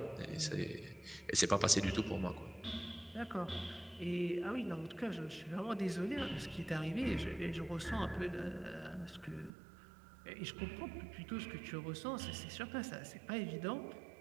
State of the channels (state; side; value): drops out; left; at 9.5 s